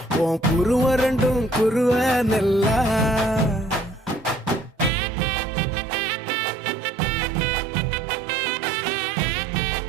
உன் குருவ ரெண்டும் குருவ நெல்லா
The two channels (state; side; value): drops out; left; at 4.9 s